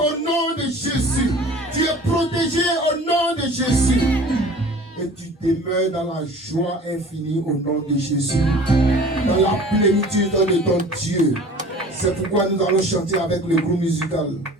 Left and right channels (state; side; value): normal; both; correlation 0.44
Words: nom de Jésus. Tu es protégé au nom de Jésus. Et tu demeures dans la joie infinie au nom de Jésus. Dans la plénitude de ton Dieu. C'est pourquoi nous allons chanter avec le groupe musical